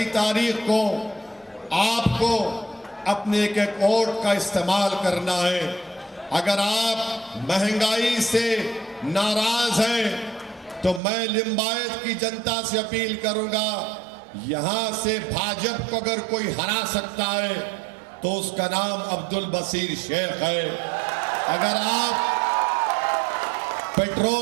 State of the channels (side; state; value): left; drops out; at 11.0 s